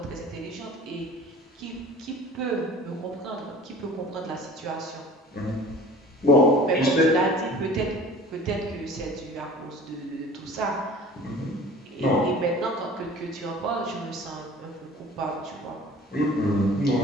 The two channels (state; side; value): normal; both; correlation 0.45